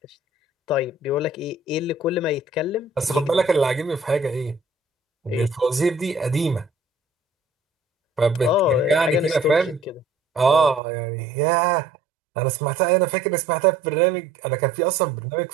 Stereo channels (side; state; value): left; drops out; at 10.8 s